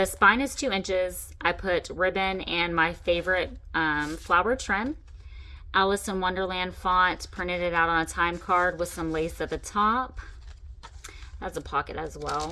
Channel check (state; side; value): identical; both; correlation 1.00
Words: spine is 2 inches. I put ribbon and my favorite flower trim. Alice in Wonderland font, printed it out on a time card with some lace at the top. That's a pocket as